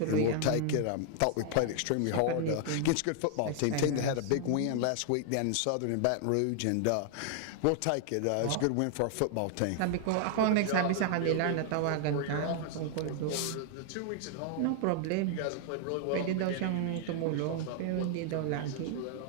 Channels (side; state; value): both; different; correlation 0.00